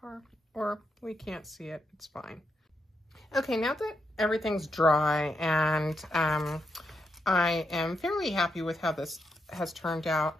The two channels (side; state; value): both; normal; correlation 0.82